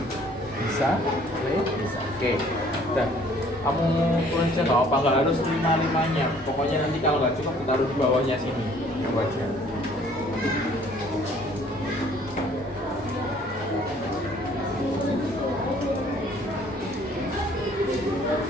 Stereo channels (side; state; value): both; normal; correlation 0.57